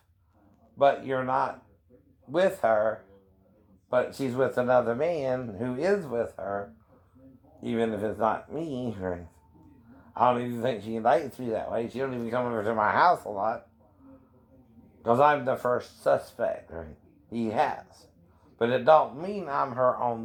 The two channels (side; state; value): both; identical; correlation 1.00